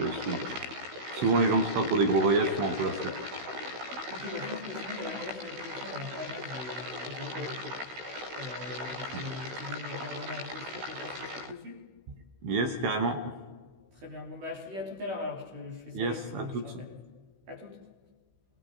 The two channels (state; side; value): late; left; 16 ms